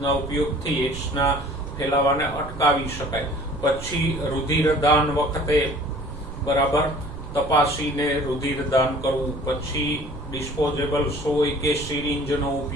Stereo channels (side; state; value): right; noise; rumble, 11 dB below the sound